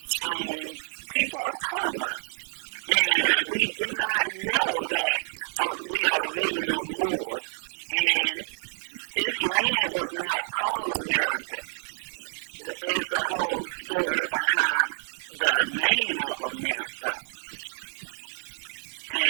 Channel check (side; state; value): left; silent; 59 dB below the other